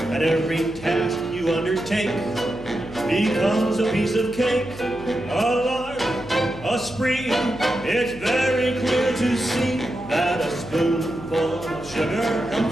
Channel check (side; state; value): left; noise; hum, 17 dB below the sound